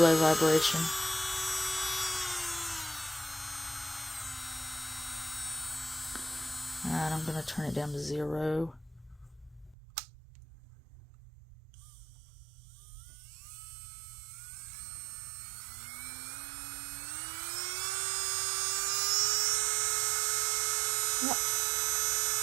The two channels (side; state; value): left; drops out; at 9.8 s